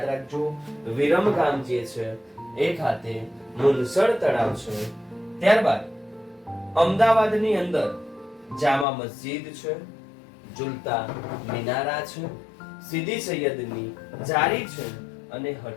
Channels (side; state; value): right; drops out; at 8.8 s